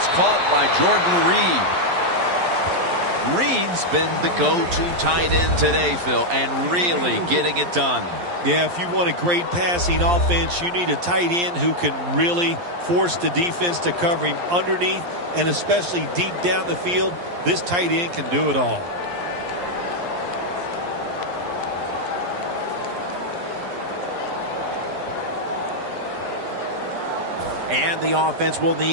caught by Jordan Reed. Reed's been the go-to tight end today, Phil, and really getting it done. Yeah, if you want a great passing offense, you need a tight end who can really force the defense to cover him underneath and especially deep down the field. This tight end can do it all. And the offense will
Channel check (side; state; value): left; late; 11 ms